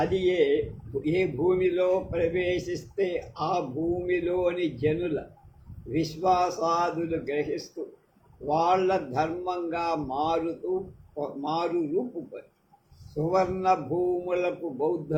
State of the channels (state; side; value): identical; both; correlation 1.00